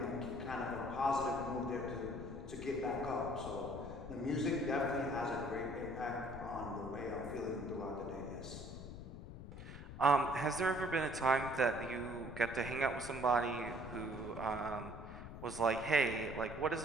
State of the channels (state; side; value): noise; left; rumble, 11 dB below the sound